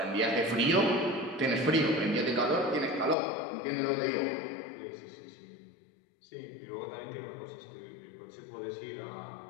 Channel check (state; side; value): drops out; right; at 3.2 s